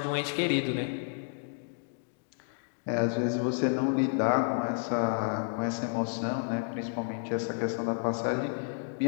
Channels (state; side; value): silent; right; digital silence